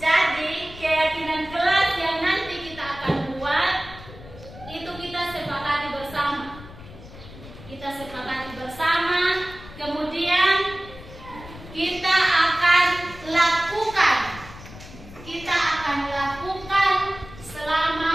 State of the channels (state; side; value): noise; left; rumble, 16 dB below the sound